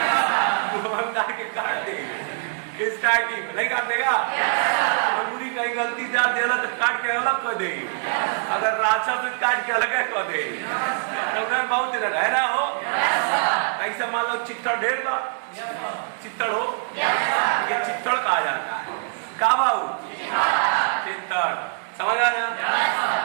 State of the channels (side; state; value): left; silent; digital silence